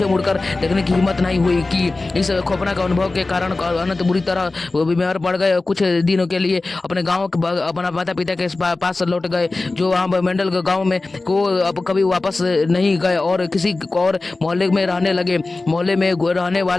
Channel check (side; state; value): right; quieter; 3.3 dB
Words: मुड़कर देखने की हिम्मत नहीं हुई कि इस खौफनाक अनुभव के कारण अनंत बुरी तरह बीमार पड़ गए। कुछ दिनों के लिए अपने गांव अपना माता पिता के पास लौट गए जो वहाँ मेंढल गांव में को अब कभी वापस नहीं गए और किसी और मोहल्ले में रहने लगे। मोहल्ले में रहने